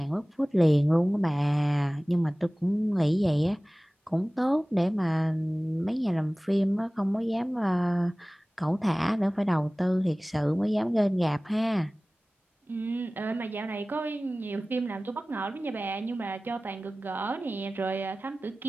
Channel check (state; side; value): normal; both; correlation 0.98